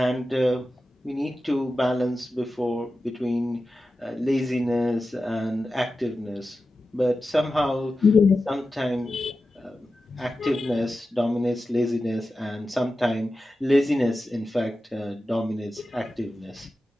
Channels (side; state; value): both; normal; correlation 0.93